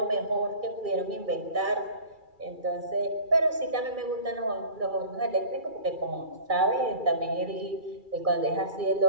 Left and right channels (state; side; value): late; left; 2.3 ms